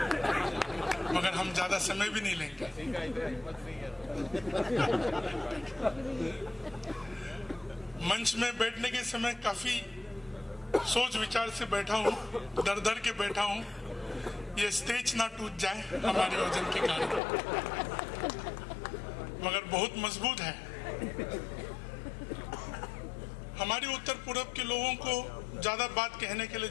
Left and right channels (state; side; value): drops out; right; at 17.2 s